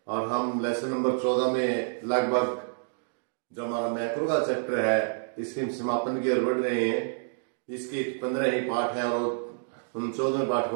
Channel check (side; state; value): left; silent; digital silence